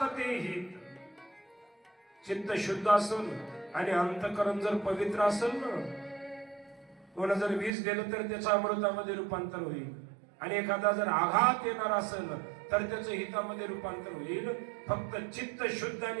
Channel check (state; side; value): drops out; left; at 7.7 s